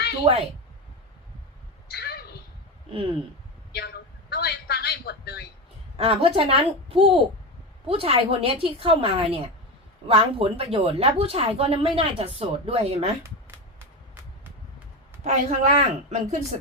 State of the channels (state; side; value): normal; both; correlation 0.18